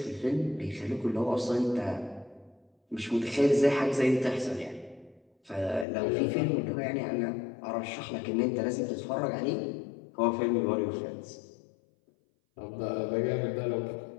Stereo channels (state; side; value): drops out; right; at 5.9 s